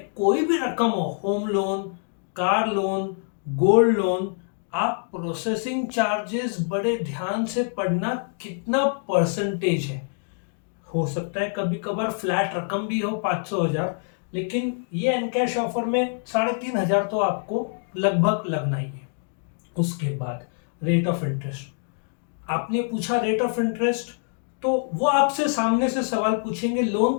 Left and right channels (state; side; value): silent; right; 61 dB below the other